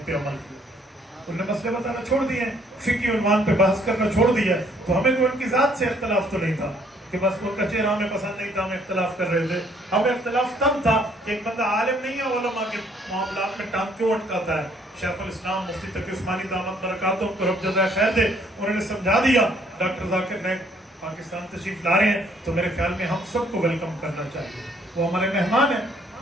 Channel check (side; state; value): both; normal; correlation 0.64